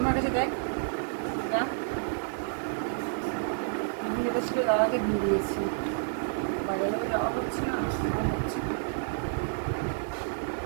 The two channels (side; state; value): left; silent; digital silence